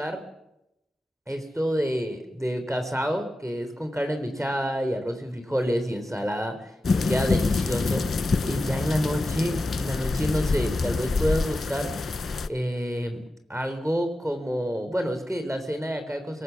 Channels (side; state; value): both; normal; correlation 0.92